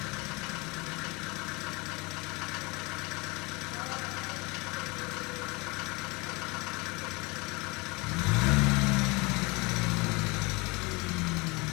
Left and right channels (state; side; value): quieter; right; 26.6 dB